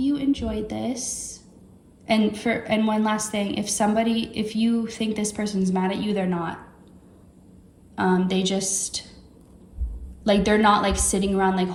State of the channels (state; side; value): identical; both; correlation 1.00